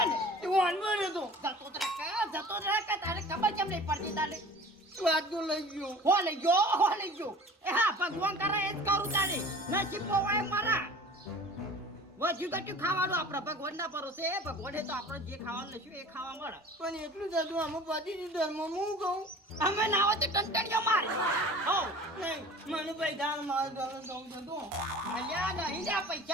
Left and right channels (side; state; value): both; normal; correlation 0.43